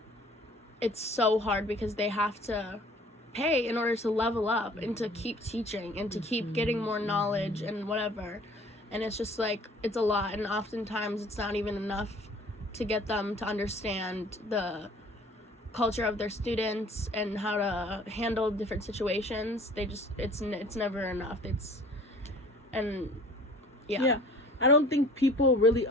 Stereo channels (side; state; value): both; normal; correlation 0.50